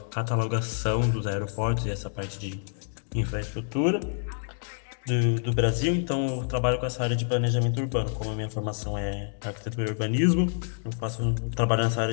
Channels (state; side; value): silent; right; digital silence